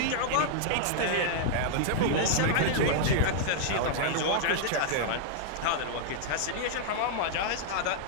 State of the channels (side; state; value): both; different; correlation -0.01